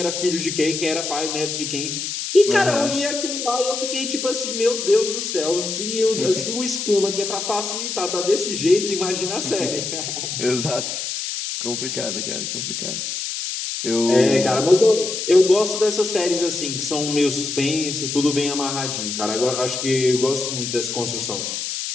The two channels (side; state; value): left; noise; hiss, 4 dB below the sound